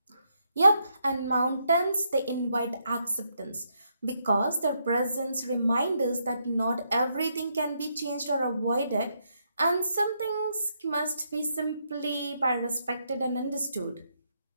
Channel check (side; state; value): both; inverted; correlation -0.78